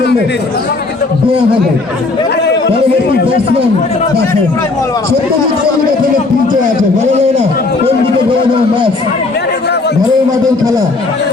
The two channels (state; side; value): quieter; right; 3.5 dB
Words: দেওয়া হবে। পরবর্তী ব্যাটসম্যান দেখেন সত্যজিৎ এখানে পিচে আছে, বলা যায় না কোন দিকে গড়ানো ম্যাচ, ঘরের মাঠের খেলা।